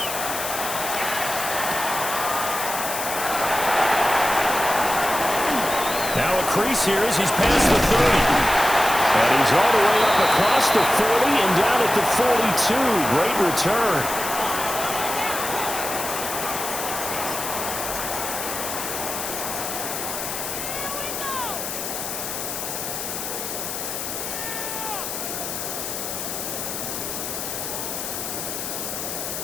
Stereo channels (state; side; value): noise; left; hiss, 5 dB below the sound